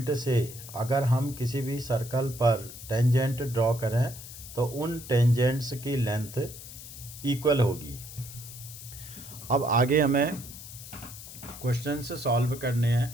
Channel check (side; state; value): left; noise; hiss, 14 dB below the sound